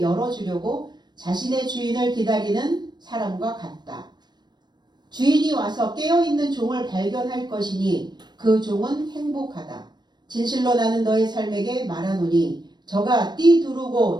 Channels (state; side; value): late; left; 0.21 ms